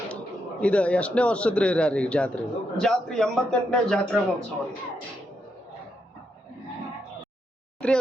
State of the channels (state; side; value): normal; both; correlation 0.81